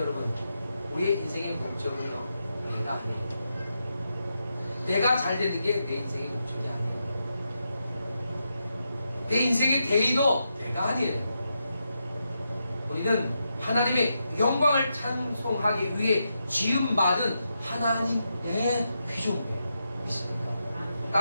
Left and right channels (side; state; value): both; inverted; correlation -0.85